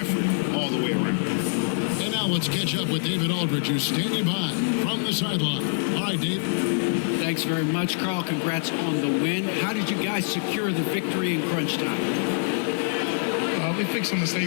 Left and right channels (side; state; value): right; silent; digital silence